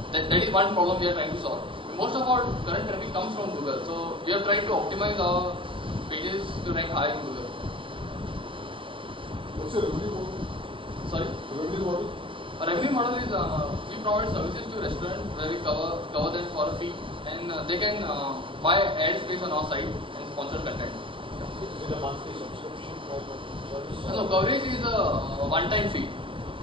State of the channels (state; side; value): late; left; 0.25 ms